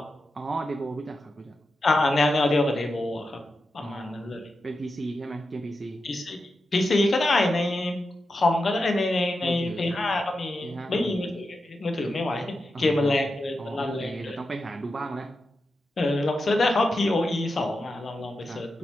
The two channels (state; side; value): normal; both; correlation 0.89